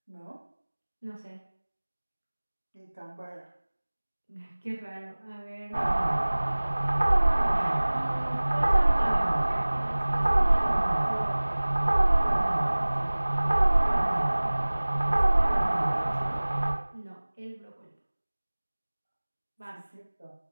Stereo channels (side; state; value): both; inverted; correlation -1.00